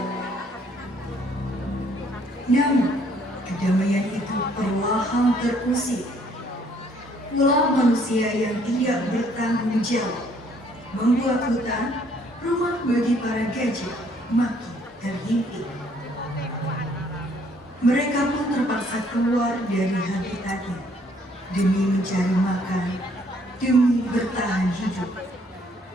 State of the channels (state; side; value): normal; both; correlation 0.64